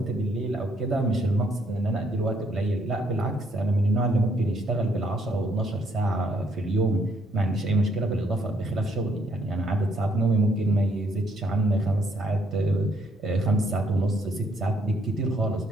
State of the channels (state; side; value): normal; both; correlation 0.70